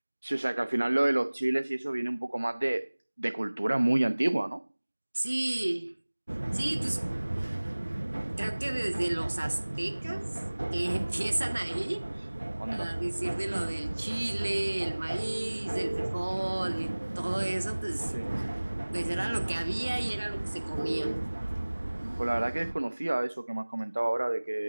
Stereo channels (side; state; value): both; inverted; correlation -1.00